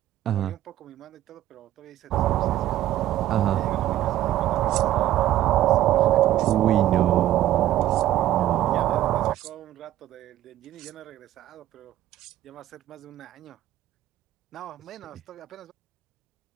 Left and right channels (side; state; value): left; quieter; 13.5 dB